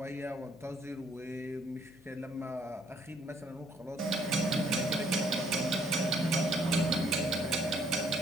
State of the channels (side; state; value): left; noise; hum, 25 dB below the sound